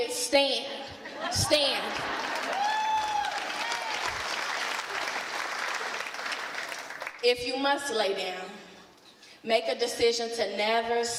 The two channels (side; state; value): both; identical; correlation 1.00